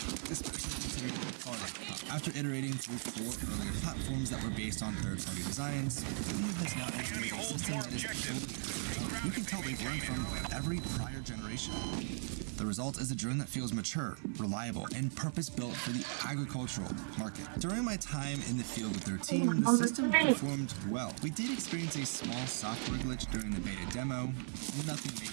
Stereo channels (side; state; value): left; silent; 52 dB below the other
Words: especially considering the product. After iterating through 4 earlier platforms that were based on third-party designs, Helio has now integrated a system that is fully. You can tell they've learned from every prior generation. The result is a drone that feels mature, reliable, and purpose-built for the agricultural market. During my time in the field with their team, the system performed well. We did experience a small software glitch during the beta demo. Nothing